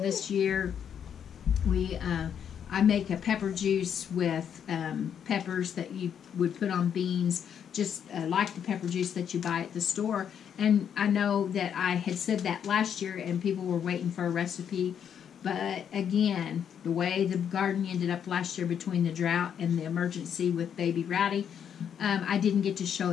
year. I make a pepper juice with peppers that you would put on beans, just like the pepper juice that you buy at the store. And I know that I had said that last year, and people were waiting for a recipe. But again, the way the garden ended up last year between the drought and the emergency with baby Rowdy, I didn't get to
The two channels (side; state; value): right; quieter; 8.4 dB